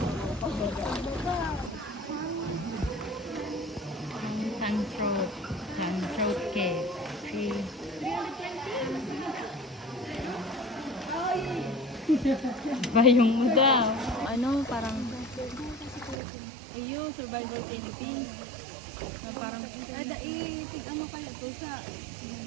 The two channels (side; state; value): left; drops out; at 16.2 s